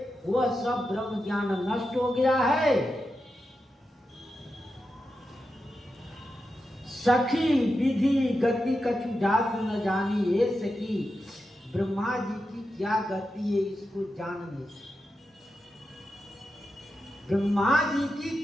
वह सब ब्रह्म ज्ञान नष्ट हो गया है। सखी विधि गति कछु जात न जानी, ये सखी ब्रह्मा जी की क्या गति है इसको जान नहीं सकते। ब्रह्मा जी की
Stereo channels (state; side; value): normal; both; correlation 0.89